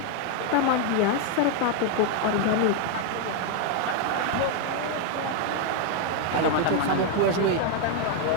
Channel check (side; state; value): both; different; correlation 0.01